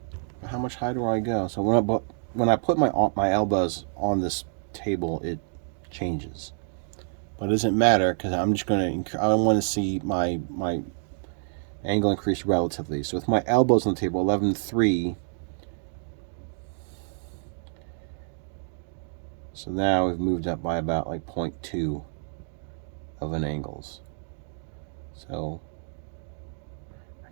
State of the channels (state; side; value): silent; left; digital silence